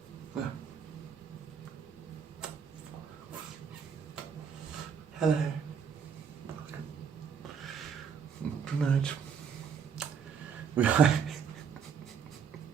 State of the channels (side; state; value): left; quieter; 6.8 dB